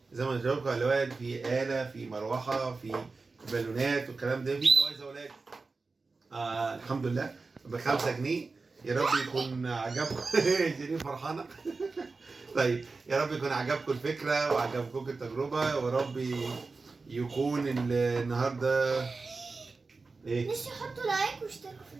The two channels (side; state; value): left; quieter; 4.0 dB